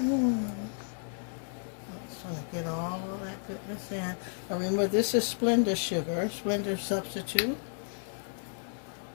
just going to get all of that goodness in. Now remember, this is Splenda sugar, Splenda substitute.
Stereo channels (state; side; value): silent; right; 56 dB below the other